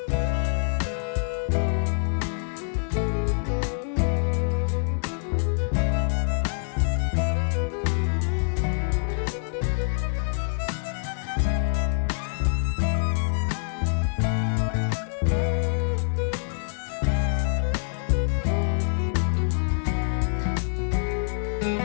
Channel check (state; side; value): silent; right; digital silence